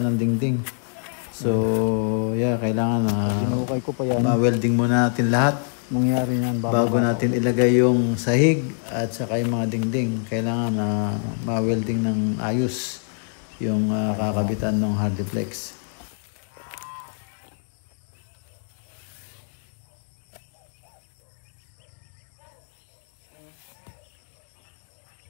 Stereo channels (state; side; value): silent; right; 62 dB below the other